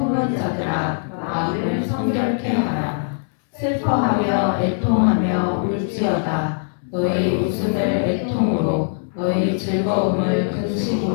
자들아, 마음을 성결케 하라. 슬퍼하며 애통하며 울지어다. 너희 웃음을 애통으로, 너희 즐거움을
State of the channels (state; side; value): silent; right; digital silence